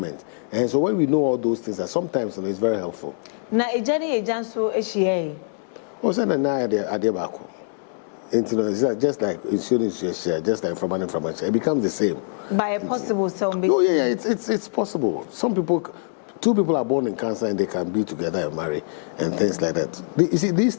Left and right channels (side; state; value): right; silent; 63 dB below the other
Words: And so when we know all those things, sometimes it's very helpful. Na ejani ejanso ehie. O say na ade baako. Just like insurance share, just like from share, it becomes the same. By a possible some. Oh yeah, it's possible. Some people two people are born in Cancer and they can be together and marry and things like that. You see, this